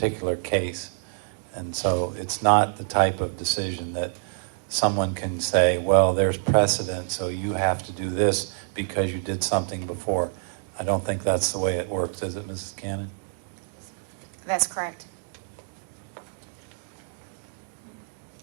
case. And so it's not the type of decision that someone can say, well, there's precedent, so you have to do this because you did something before. I don't think that's the way it works, is it, Mrs. Cannon? That's correct.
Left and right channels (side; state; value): left; silent; digital silence